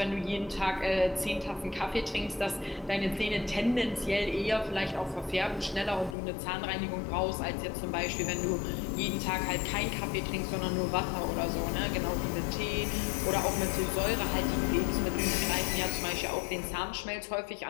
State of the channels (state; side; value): drops out; right; at 6.2 s